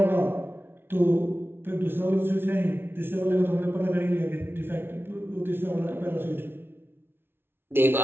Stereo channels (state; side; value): late; left; 0.11 ms